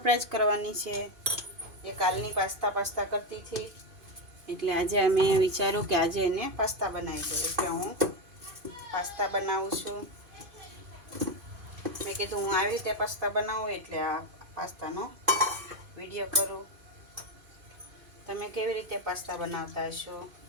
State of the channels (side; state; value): left; late; 2.5 ms